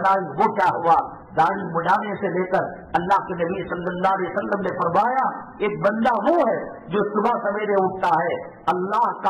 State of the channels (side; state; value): both; identical; correlation 1.00